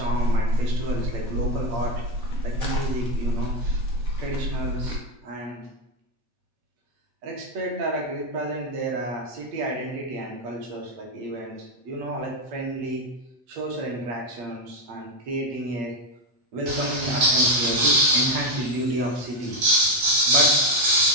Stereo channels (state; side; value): late; left; 8.6 ms